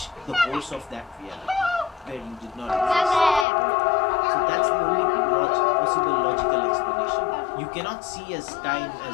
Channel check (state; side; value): drops out; right; at 3.5 s